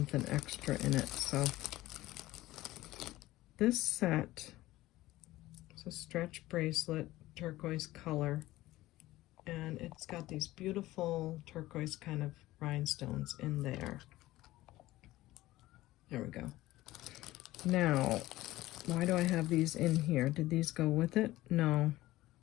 extra in it. So this set is a stretch bracelet, turquoise color, and it's got these beautiful turquoise kind of rhinestones in there. There we go. Now, why do I have these in here? Did these go with it? No.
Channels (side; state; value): right; quieter; 17.0 dB